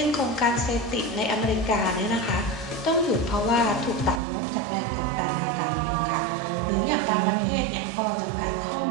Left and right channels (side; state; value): left; drops out; at 4.2 s